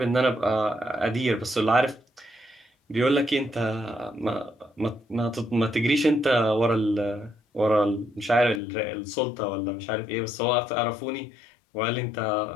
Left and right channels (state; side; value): drops out; right; at 8.6 s